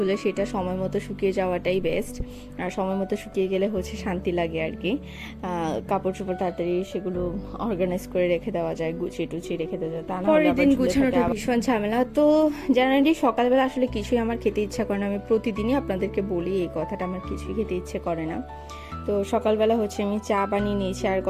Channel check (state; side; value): identical; both; correlation 1.00